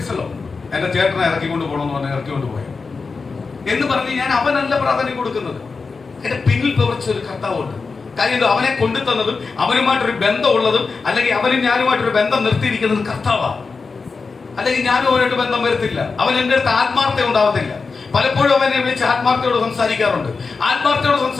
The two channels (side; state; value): right; quieter; 4.6 dB